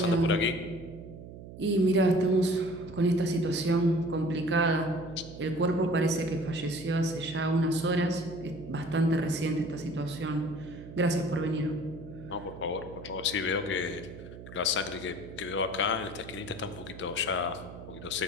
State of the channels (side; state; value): right; noise; hum, 14 dB below the sound